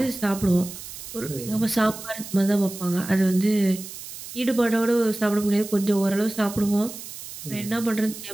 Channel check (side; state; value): right; noise; hiss, 12 dB below the sound